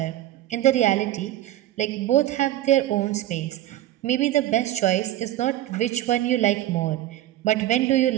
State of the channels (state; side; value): quieter; left; 13.8 dB